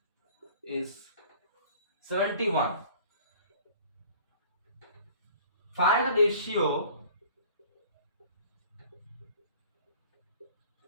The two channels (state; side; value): inverted; both; correlation -0.49